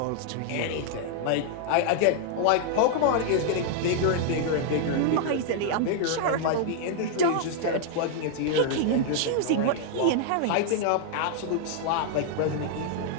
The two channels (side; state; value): both; different; correlation 0.00